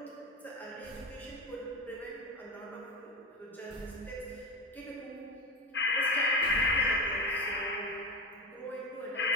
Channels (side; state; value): both; normal; correlation 0.23